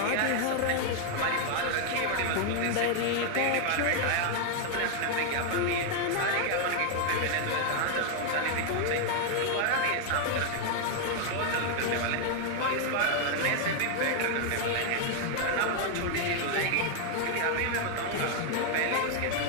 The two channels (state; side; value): different; both; correlation 0.00